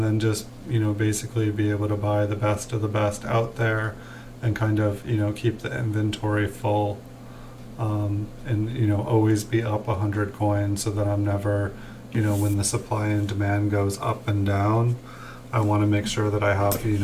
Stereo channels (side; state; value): both; identical; correlation 1.00